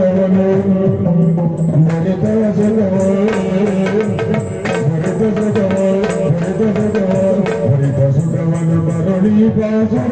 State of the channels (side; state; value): both; identical; correlation 1.00